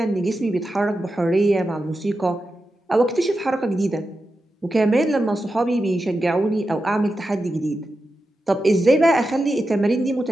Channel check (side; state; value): both; normal; correlation 0.90